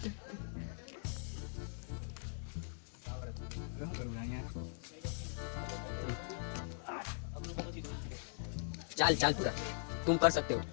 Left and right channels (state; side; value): silent; right; 51 dB below the other